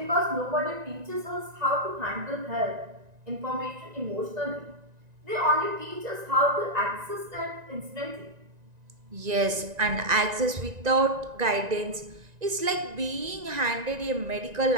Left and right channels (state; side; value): late; left; 1.9 ms